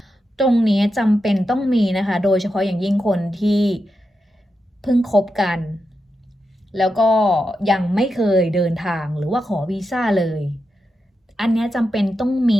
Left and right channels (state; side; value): normal; both; correlation 0.88